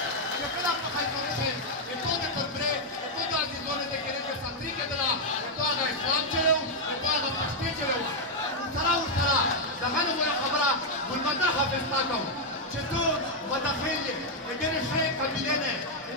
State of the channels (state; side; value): normal; both; correlation -0.01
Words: دهانو ولا خبره والمداخه بتاعتهم شتو مداخل غير شيء قبيلنا